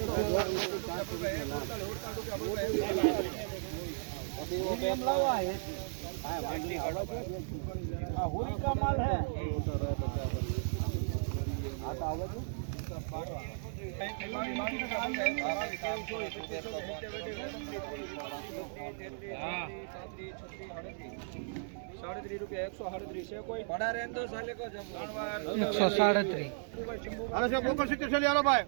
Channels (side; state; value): left; silent; digital silence